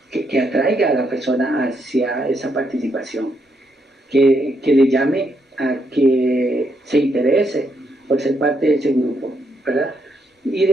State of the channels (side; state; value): both; normal; correlation 0.77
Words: que atraiga a la persona hacia esa participación, que le llame a que se interese por ser parte de ese grupo, ¿verdad? Y